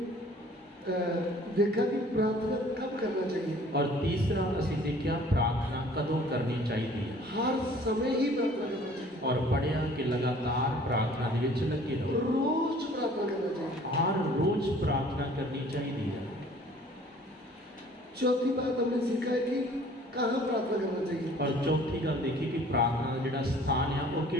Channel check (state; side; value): normal; both; correlation 0.52